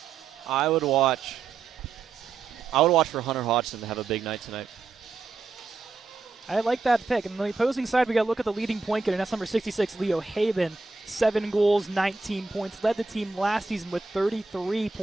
I would watch for Hunter Hodgson to have a big night tonight. I like that pick. And on the opposing side, we got to look at the leading point getter. That's number 66, Leo Haben. 7 goals, 19 points. Led the team last season with 33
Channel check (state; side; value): quieter; left; 4.2 dB